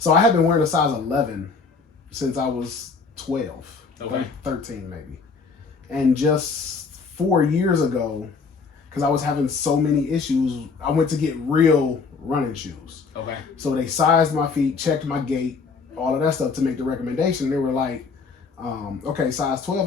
I had been wearing a size 11 since I was 12, 13 maybe. And just 4 years ago, because I was having so many issues, I went to get real running shoes. Okay. So they sized my feet, checked my gait, all of that stuff to make the recommendation. They were like, okay, size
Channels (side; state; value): right; quieter; 4.8 dB